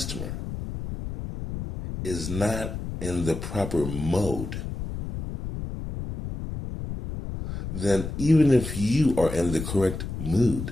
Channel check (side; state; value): left; noise; rumble, 7 dB below the sound